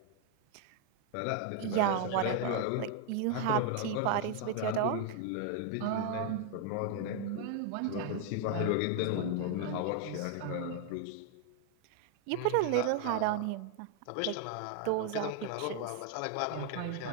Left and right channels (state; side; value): different; both; correlation 0.00